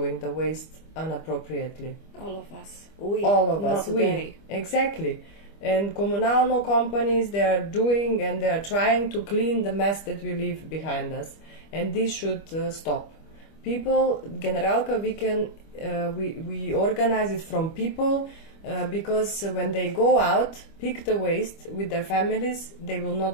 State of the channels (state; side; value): late; right; 25 ms